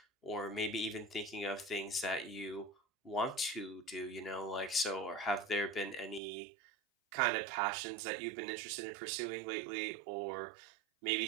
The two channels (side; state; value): left; drops out; at 6.2 s